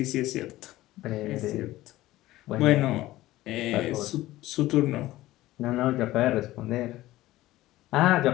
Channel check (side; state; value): right; quieter; 16.6 dB